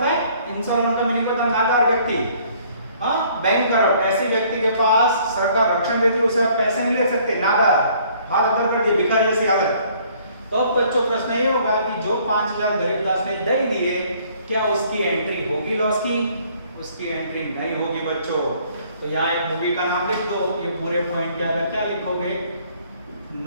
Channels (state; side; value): inverted; both; correlation -0.60